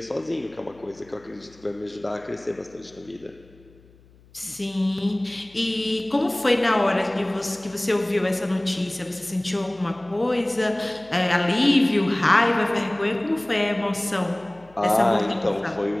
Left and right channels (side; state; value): left; noise; hum, 27 dB below the sound